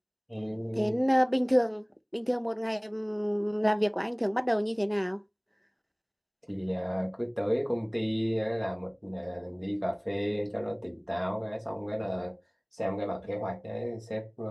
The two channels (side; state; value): both; identical; correlation 1.00